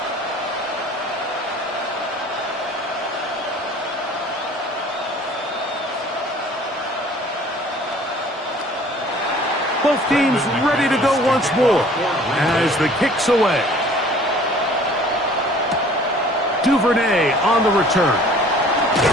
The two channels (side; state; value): both; normal; correlation 0.51